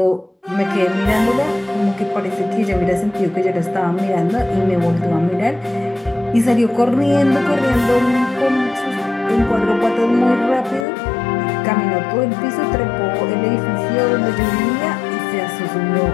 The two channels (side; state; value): right; drops out; at 10.9 s